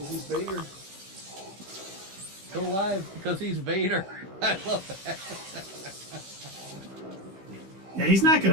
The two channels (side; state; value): left; late; 16 ms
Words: is Vader. Still alive because he's Vader. I love that. Yeah, he's not